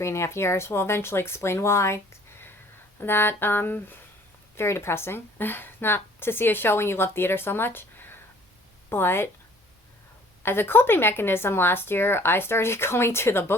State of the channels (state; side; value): normal; both; correlation 0.55